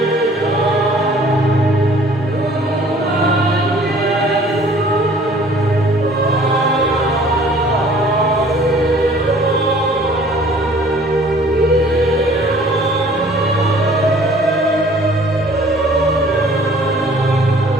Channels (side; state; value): both; normal; correlation 0.53